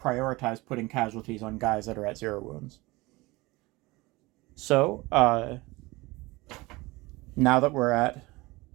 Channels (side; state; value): left; quieter; 21.9 dB